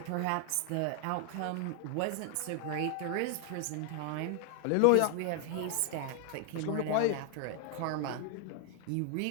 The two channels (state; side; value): different; both; correlation 0.00